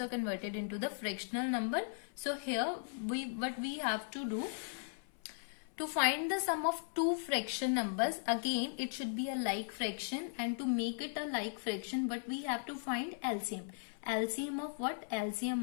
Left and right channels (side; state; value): right; silent; 53 dB below the other